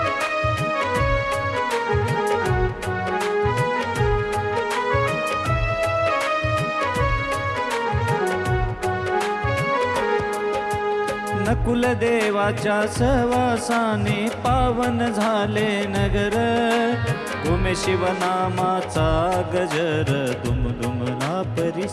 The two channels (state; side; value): identical; both; correlation 1.00